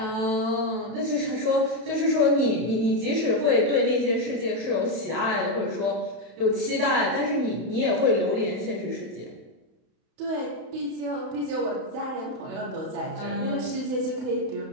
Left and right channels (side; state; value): left; late; 32 ms